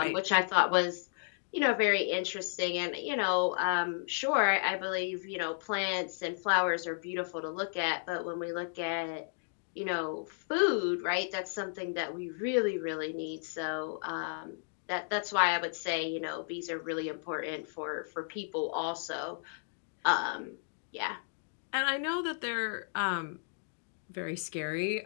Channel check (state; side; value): silent; right; digital silence